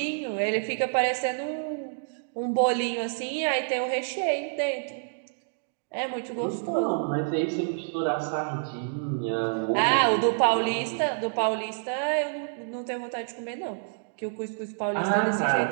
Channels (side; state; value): left; silent; digital silence